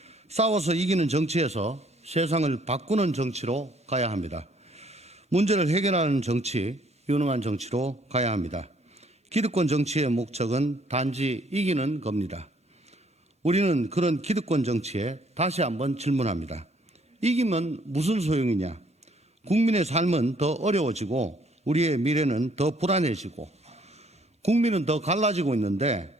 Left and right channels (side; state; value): both; normal; correlation 0.64